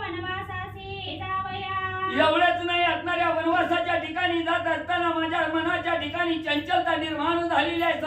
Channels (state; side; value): identical; both; correlation 1.00